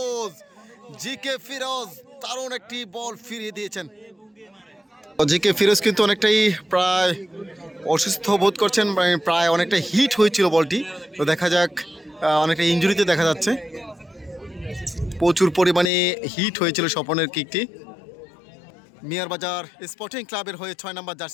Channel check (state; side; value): drops out; right; at 15.9 s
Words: ফিরোজ দারুণ একটি বল ফিরিয়ে দিয়েছেন। জিকে ফিরোজ কিন্তু অনেকটাই প্রায় অসুস্থ বোধ করছেন, প্রায় অনেকটা হিট হয়েছিল বলটি। তো দেখা যাক, অনেকটা ইনজুরিতে দেখা যাচ্ছে, প্রচুর পরিমাণে হিট হয়েছিল স্বপনের কিকটি। মিয়ারবাজার স্পোর্টিং ক্লাবের হয়ে 6 নম্বর